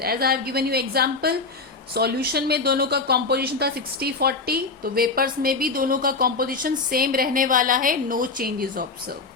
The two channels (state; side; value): quieter; right; 4.0 dB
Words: I have given you example, solution में दोनों का कॉम्पोजिशन था 60-40, तो वेपर्स में भी दोनों का कॉम्पोजिशन सेम रहने वाला है. No changes observe.